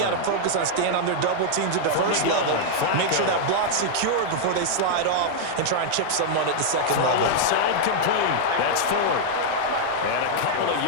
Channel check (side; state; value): both; different; correlation -0.01